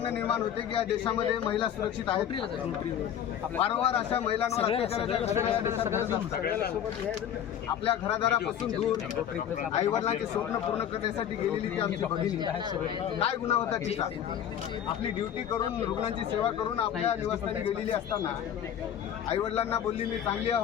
निर्माण होते की या देशामध्ये महिला सुरक्षित आहेत। वारंवार अशा महिलांवर आपल्या घरादारापासून दूर आईवडिलांचे स्वप्न पूर्ण करण्यासाठी गेलेली ती आमची भगिनी काय गुन्हा होता तिचा? आपली ड्युटी करून रुग्णांची सेवा करून आपल्या निवासस्थानी गेलेली असताना आईवडिलांना बोलली मी चांगली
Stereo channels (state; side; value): quieter; right; 9.6 dB